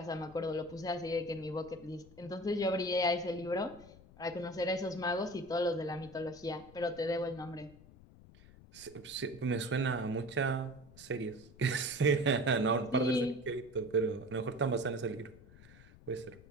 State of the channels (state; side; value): noise; left; rumble, 21 dB below the sound